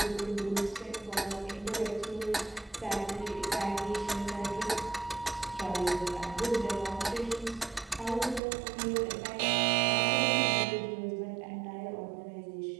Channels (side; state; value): left; drops out; at 8.4 s